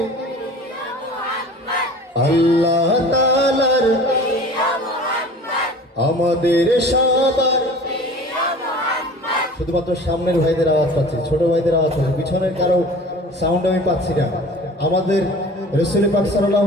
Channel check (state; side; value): normal; both; correlation 0.42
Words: আল্লাহ তাআলার আমাদের সবার শুধুমাত্র সামনের ভাইদের আওয়াজ পাচ্ছি, ছোট ভাইদের আওয়াজ পাচ্ছি, পিছনের কারো সাউন্ড আমি পাচ্ছি না। আমাদের রাসূল পাক সাল্লাল্লাহু